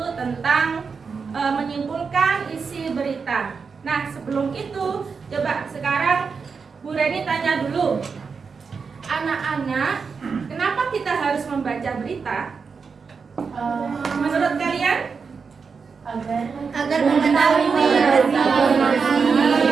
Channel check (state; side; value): quieter; left; 5.4 dB